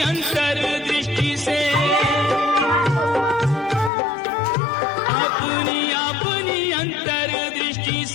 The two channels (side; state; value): right; drops out; at 3.9 s